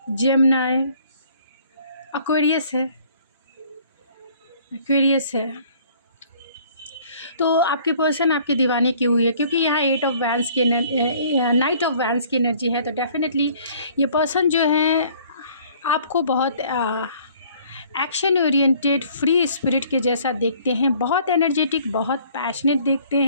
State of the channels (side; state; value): both; inverted; correlation -0.56